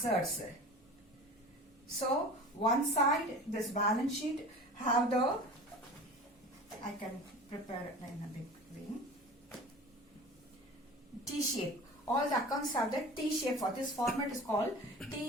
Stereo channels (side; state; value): both; normal; correlation 0.38